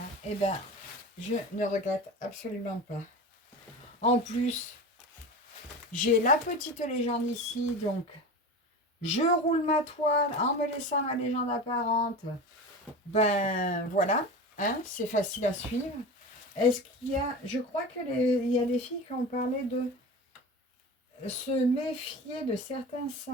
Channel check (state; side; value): normal; both; correlation 0.30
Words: je ne regrette absolument pas. En plus, j'ai la petite légende ici, donc je roule ma toile en me laissant ma légende apparente. Voilà, hein, c'est facile à suivre. Est-ce qu'il y a... Je crois qu'il y a des filles qui ont parlé de se méfier de certains